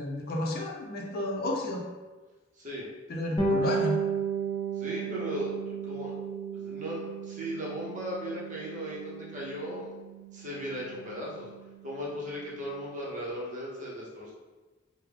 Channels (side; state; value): both; normal; correlation 0.45